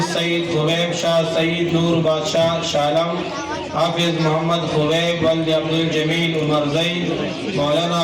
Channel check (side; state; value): both; identical; correlation 1.00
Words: سید خبیب شاہ سید نور بادشاہ شالم، حافظ محمد خبیب ولد عبد الجمیل عمر زئی، مولانا